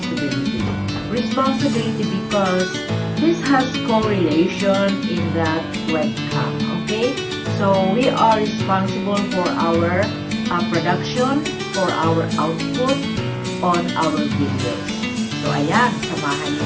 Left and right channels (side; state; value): both; identical; correlation 1.00